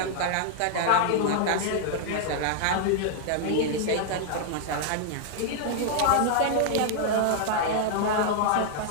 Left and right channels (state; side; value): different; both; correlation 0.00